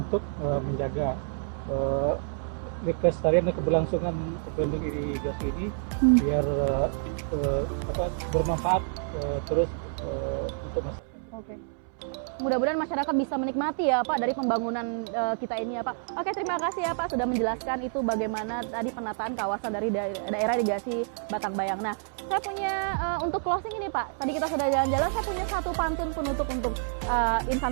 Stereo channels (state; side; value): silent; left; 59 dB below the other